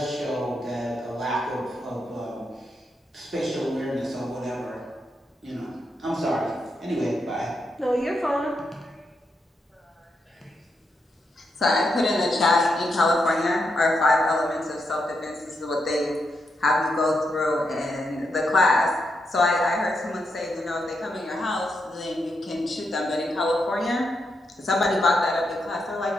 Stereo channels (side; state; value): both; normal; correlation 0.83